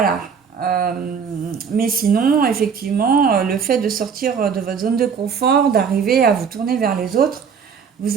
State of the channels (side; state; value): left; quieter; 6.5 dB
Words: Mais sinon, effectivement, le fait de sortir de votre zone de confort, d'arriver à vous tourner vers les autres,